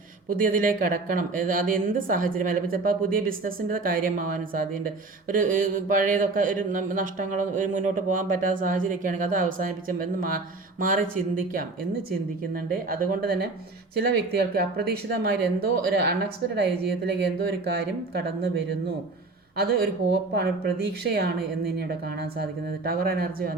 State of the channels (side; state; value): left; quieter; 3.5 dB